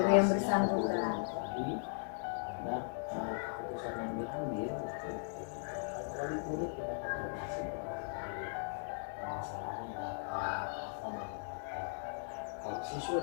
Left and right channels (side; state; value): right; silent; 52 dB below the other